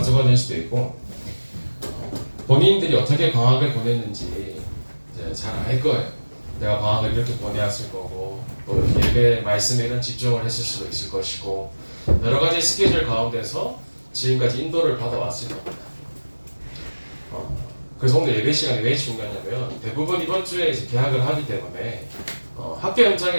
될 수도 있고, 본인들이 어떻게 방학을 보냈는지 이제 잘 알 거예요. 내가 방학을 이렇게 보내왔을 거고, 또 이렇게 예배 말씀에 이런 집중을 했을 수도 있을 것이고, 여러 가지 스케줄 가운데서 지금까지 인도를 받아왔을 겁니다. 그래서 오늘 예배 시간이 왜 중요하냐면, 대부분 이번 주에 이제 개학을 하기 때문에 학교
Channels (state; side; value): inverted; both; correlation -1.00